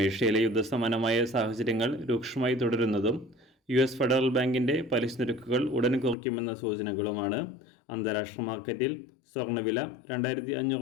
യുദ്ധസമാനമായ സാഹചര്യങ്ങൾ രൂക്ഷമായി തുടരുന്നതും US ഫെഡറൽ ബാങ്കിൻ്റെ പലിശ നിരക്കുകൾ ഉടൻ കുറയ്ക്കുമെന്ന സൂചനകളുമാണ് അന്താരാഷ്ട്ര മാർക്കറ്റിൽ സ്വർണ്ണവില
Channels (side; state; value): right; drops out; at 6.2 s